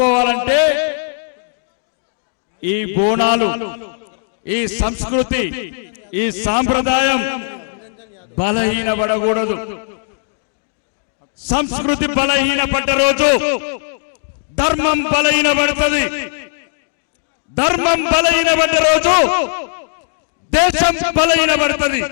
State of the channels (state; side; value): silent; right; digital silence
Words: ఈ బోనాలు, ఈ సంస్కృతి, ఈ సాంప్రదాయం బలహీనపడకూడదు. సంస్కృతి బలహీనపడ్డ రోజు ధర్మం బలహీనపడుతుంది. ధర్మం బలహీనపడ్డ రోజు దేశం బలహీనపడుతుంది.